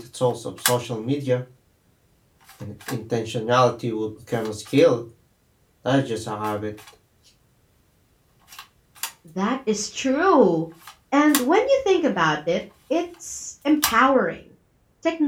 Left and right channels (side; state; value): both; identical; correlation 1.00